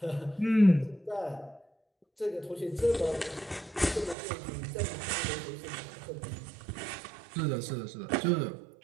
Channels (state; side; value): drops out; left; at 4.2 s